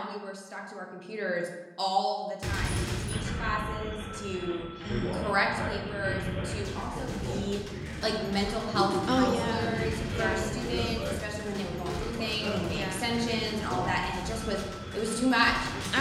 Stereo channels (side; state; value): both; identical; correlation 1.00